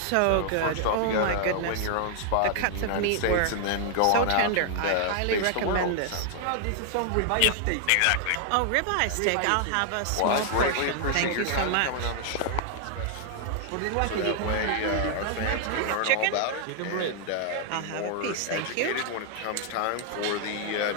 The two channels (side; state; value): both; different; correlation 0.00